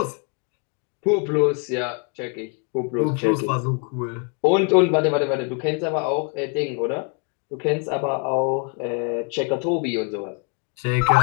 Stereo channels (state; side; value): quieter; right; 34.4 dB